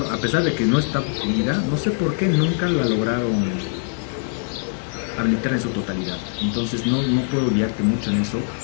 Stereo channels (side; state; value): right; silent; digital silence